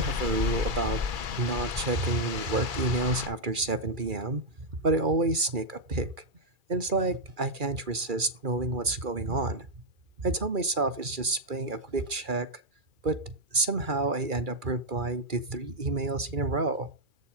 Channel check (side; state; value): left; late; 2.3 ms